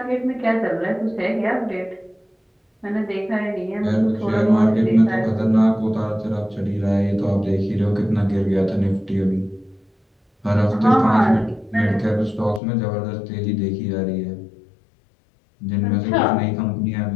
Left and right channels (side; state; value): right; drops out; at 12.6 s